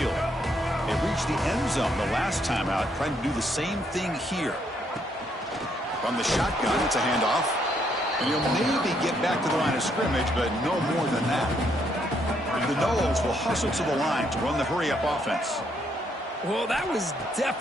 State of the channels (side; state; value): both; normal; correlation 0.72